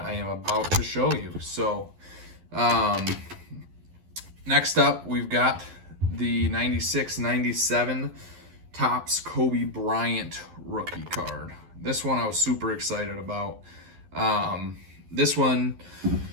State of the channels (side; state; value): left; late; 11 ms